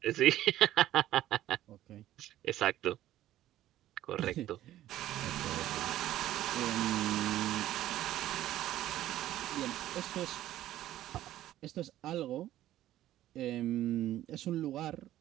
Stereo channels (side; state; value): left; quieter; 13.6 dB